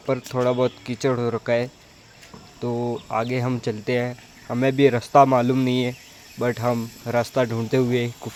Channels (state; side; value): identical; both; correlation 1.00